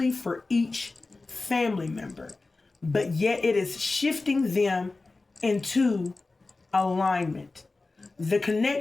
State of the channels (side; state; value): right; quieter; 3.5 dB